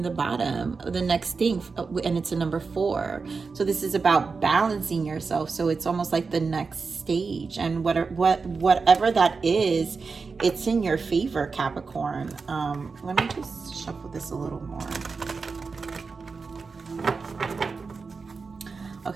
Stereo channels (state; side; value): quieter; left; 4.7 dB